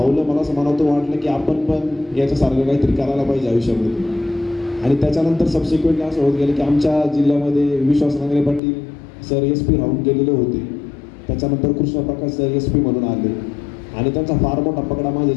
मला असं मनातून वाटलं की आपण पण याच्यासारखं काहीतरी करायला पाहिजे आयुष्यामध्ये. आणि त्याच्यानंतर सबसिक्वेंटली असं होत गेलं की आमच्या जिल्ह्यामध्ये विश्वास नांगरे पाटील सर SP राहून गेलेले होते. त्याच्यानंतर कृष्णप्रकाश सर SP म्हणून आले आणि त्यांचा फार मोठा पगडा माझ्या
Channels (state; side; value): drops out; right; at 8.6 s